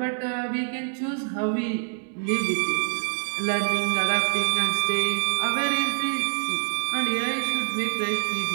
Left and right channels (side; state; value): left; silent; 61 dB below the other